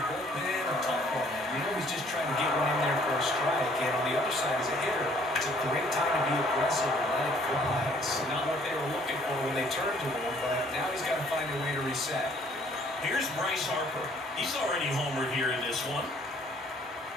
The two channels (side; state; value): both; normal; correlation 0.60